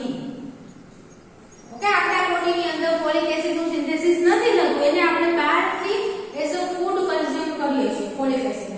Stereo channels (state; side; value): identical; both; correlation 1.00